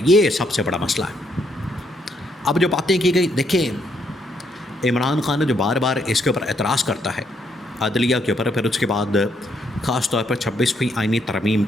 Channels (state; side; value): normal; both; correlation 0.73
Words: یہ سب سے بڑا مسئلہ ہے۔ اب جو باتیں کی گئی، دیکھیں عمران خان جو بار بار اس کے اوپر اعتراض کرتا ہے عدلیہ کے اوپر، پھر اس کے بعد خاص طور پر 26ویں آئینی ترمیم